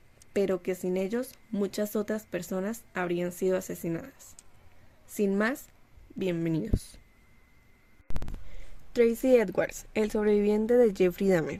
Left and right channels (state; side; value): identical; both; correlation 1.00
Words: pero que sin ellos muchas otras personas habrían sido asesinadas. Sin más, bienvenidos. Tracy Edwards, el sobreviviente de Jeffrey